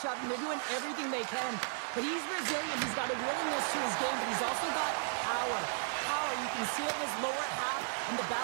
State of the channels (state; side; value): silent; left; digital silence